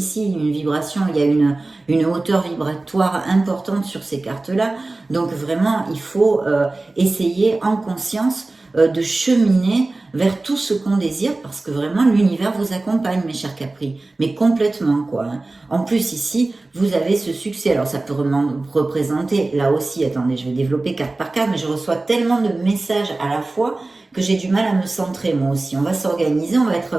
une vibration, il y a une hauteur vibratoire importante sur ces cartes-là. Donc vraiment, il faut essayer en conscience de cheminer vers tout ce qu'on désire parce que vraiment l'univers vous accompagne, mes chers Capri, mais complètement quoi. Hein. En plus ici, vous avez ce succès. Alors ça peut représenter, là aussi, attendez, je vais développer carte par carte, mais je reçois tellement de messages à la fois que j'ai du mal à me centrer moi aussi. On va s'organiser, on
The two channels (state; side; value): quieter; left; 3.1 dB